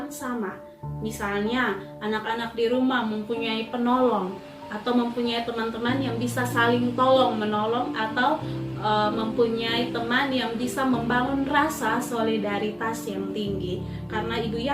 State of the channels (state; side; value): identical; both; correlation 1.00